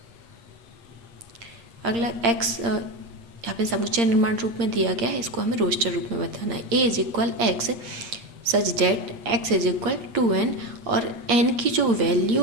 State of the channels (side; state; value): left; late; 8.7 ms